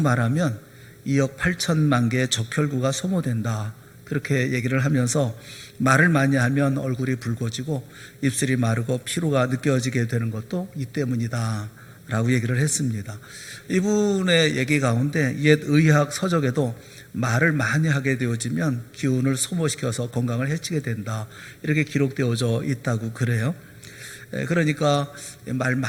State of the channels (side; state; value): both; identical; correlation 1.00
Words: 2억 8천만 개의 적혈구가 소모된다, 그렇게 얘기를 하면서 말을 많이 하면 얼굴이 붉어지고 입술이 마르고 피로가 느껴지게 되는 것도 이 때문이다 라고 얘기를 했습니다. 이분의 얘기 가운데 옛 의학 서적에도 말을 많이 하게 되어지면 기운을 소모시켜서 건강을 해치게 된다, 이렇게 기록되어져 있다고 그래요. 그러니까 말